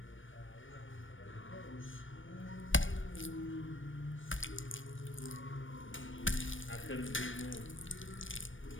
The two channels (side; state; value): right; late; 0.57 ms